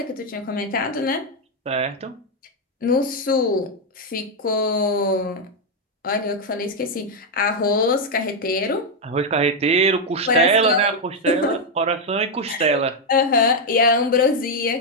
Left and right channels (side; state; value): both; normal; correlation 0.02